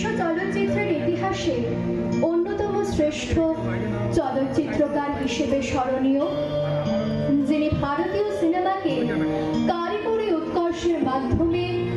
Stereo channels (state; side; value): identical; both; correlation 1.00